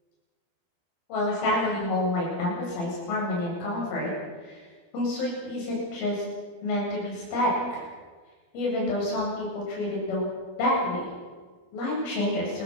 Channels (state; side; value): late; right; 12 ms